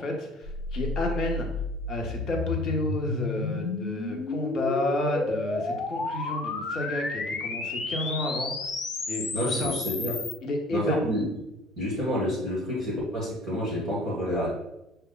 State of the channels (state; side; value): normal; both; correlation 0.49